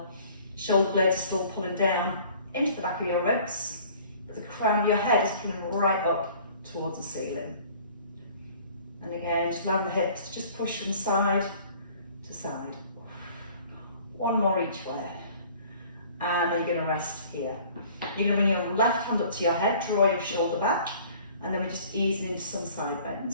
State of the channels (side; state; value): both; inverted; correlation -0.52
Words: Shoulder blades are still pulling down into the back of your ribs. The crown of your head is pulling right up towards the ceiling. And again, just allowing the hips to just push from side to side. One more each way. And then you're going to rest here. You're going to bring your left hand up to your head, draw your shoulder back, and then we're just easing into some side